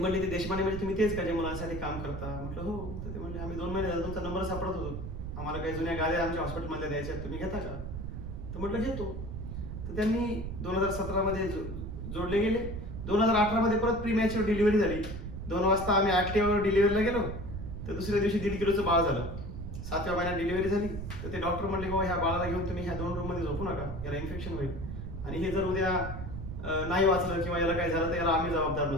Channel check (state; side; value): noise; right; rumble, 7 dB below the sound